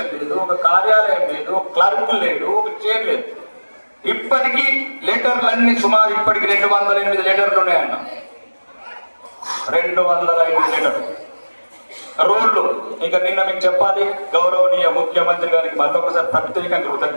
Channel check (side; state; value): both; inverted; correlation -1.00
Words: లేదు, ఒక కార్యాలయం లేదు, ఒక క్లర్క్ లేడు, ఒక చైర్ లేదు. ఇప్పటికీ లెటర్లు అన్ని సుమారు ఇప్పటికి 208 లెటర్లు ఉన్నాయన్న. 208 లెటర్లు. రోడ్లు ఇక నిన్న మీకు చెప్పాలి, గౌరవనీయ ముఖ్యమంత్రి గారికి మరొకసారి ప్రత్యేకంగా